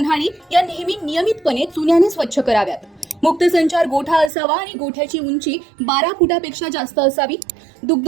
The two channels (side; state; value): left; drops out; at 4.3 s